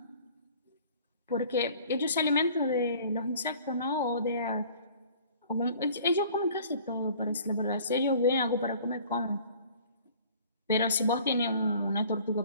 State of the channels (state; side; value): inverted; both; correlation -0.50